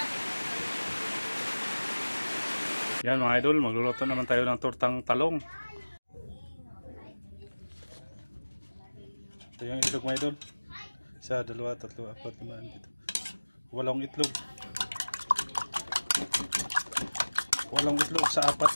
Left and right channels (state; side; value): inverted; both; correlation -1.00